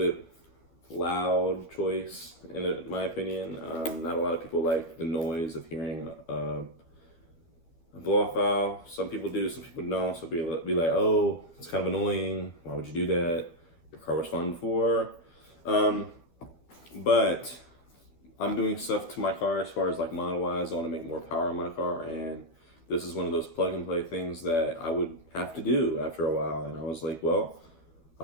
loud choice, in my opinion. Not a lot of people like the noise of hearing a blow-off valve. Some people do, some people don't. So be like, oh, it's kind of annoying. Why would you do that? Your car was fun before. But I'm doing stuff to my car as far as like model-wise. I want to make more power in my car, and this is one of those plug-and-play things that I would have to do after a while. And I was like, well,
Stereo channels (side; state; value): right; late; 12 ms